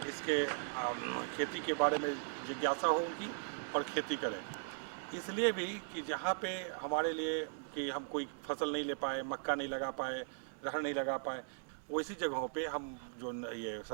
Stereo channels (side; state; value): left; silent; digital silence